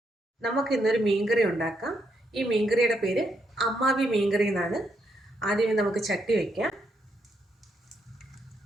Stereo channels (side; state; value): both; normal; correlation 0.78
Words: നമുക്ക് ഇന്നൊരു മീൻകറി ഉണ്ടാക്കാം. ഈ മീൻകറിയുടെ പേര് അമ്മാവി മീൻകറി എന്നാണ്. ആദ്യമേ നമുക്ക് ചട്ടി വയ്ക്കാം.